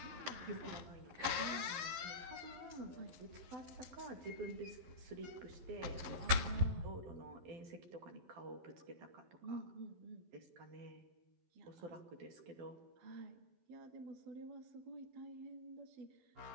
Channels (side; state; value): left; late; 11 ms